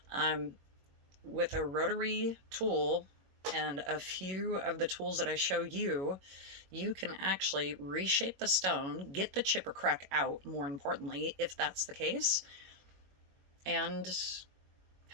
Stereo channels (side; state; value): left; late; 21 ms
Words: With a rotary tool and a few of the tools that I show you, you can actually reshape the stone, get the chip or crack out, more importantly, if that's the case, and